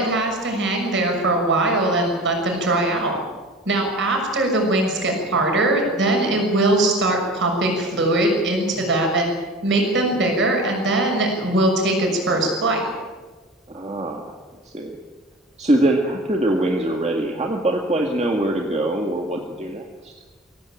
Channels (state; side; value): normal; both; correlation 0.38